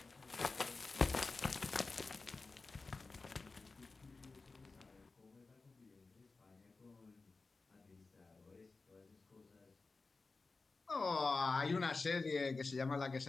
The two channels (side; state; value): right; quieter; 3.9 dB